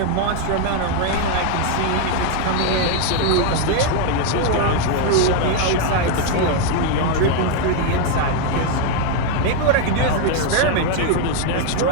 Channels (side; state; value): both; different; correlation 0.01